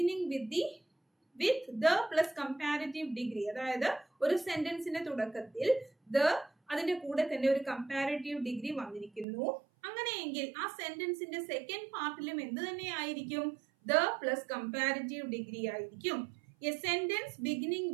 with the plus comparative degree. അതായത് ഒരു സെന്റൻസിന്റെ തുടക്കത്തിൽ ദ അതിന്റെ കൂടെ തന്നെ ഒരു കമ്പാരിറ്റീവ് ഡിഗ്രി വന്നിരിക്കുന്നു. അങ്ങനെയെങ്കിൽ ആ സെന്റൻസിന്റെ സെക്കൻഡ് പാർട്ടിലും എന്ത് തന്നെ ആയിരിക്കും? ദ പ്ലസ് കമ്പാരിറ്റീവ് ഡിഗ്രി ആയിരിക്കും. A sentence beginning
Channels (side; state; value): left; drops out; at 9.2 s